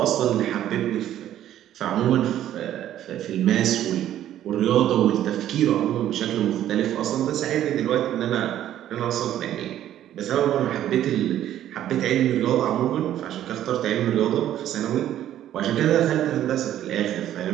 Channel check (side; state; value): left; quieter; 11.9 dB